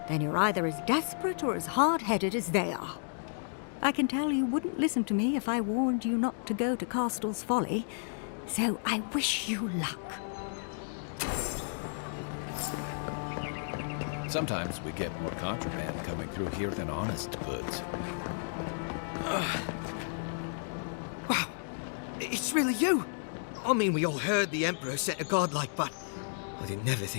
Then you're either as desperate or as hard-headed as they are. I can tell you wouldn't listen to me if I warned you not to go to Castel's Folly, so I wish you luck. Sometimes we get more contraband coming through here than honest goods. Wow, it's really you! I mean, we all heard the Emperor sent a godlike, but I didn't never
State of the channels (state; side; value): silent; right; digital silence